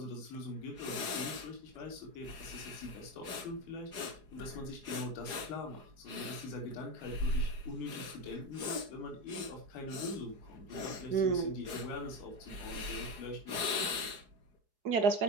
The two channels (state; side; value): late; left; 4.8 ms